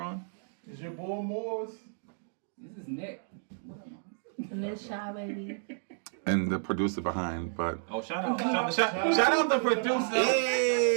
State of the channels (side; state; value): left; silent; digital silence